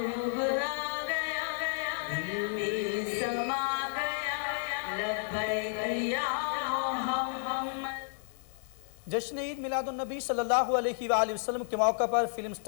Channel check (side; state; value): right; silent; digital silence